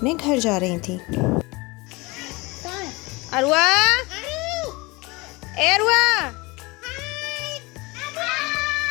घर जा रही थी। अरुआ, अरुआ,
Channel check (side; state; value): right; quieter; 24.3 dB